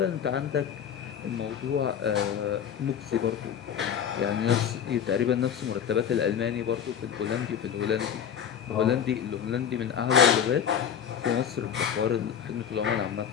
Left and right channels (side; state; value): right; quieter; 8.5 dB